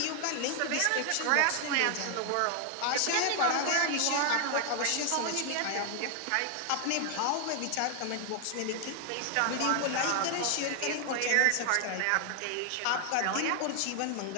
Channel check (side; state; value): both; different; correlation 0.00